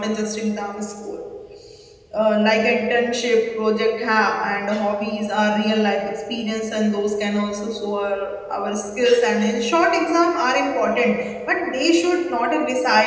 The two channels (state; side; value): identical; both; correlation 1.00